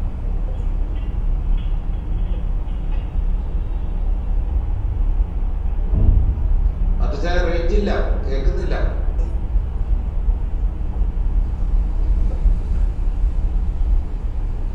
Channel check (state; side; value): identical; both; correlation 1.00